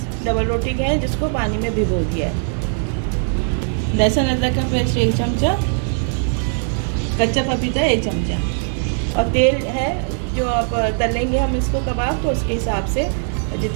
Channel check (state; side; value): silent; left; 57 dB below the other